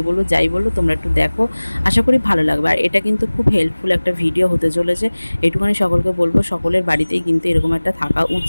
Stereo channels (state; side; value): inverted; both; correlation -1.00